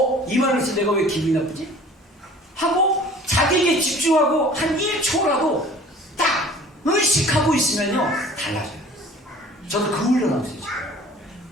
이 말을 해서 내가 왜 기분이 나쁘지? 하고 자기에게 집중하고 한 1초라도 딱 의식하고 있으면요 달라져요. 저도 그 훈련하고 있어요.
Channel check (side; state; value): both; normal; correlation 0.47